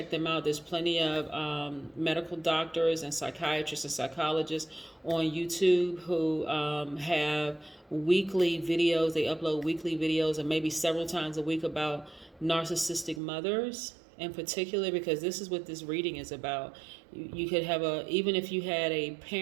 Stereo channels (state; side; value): drops out; left; at 13.2 s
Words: them out. There's plenty of medical doctors and psychiatrists and psychologists on YouTube who have weekly videos. They upload weekly videos and maybe several times a week about narcissistic mothers in particular, because this is what this reading is about. You could have even if you had a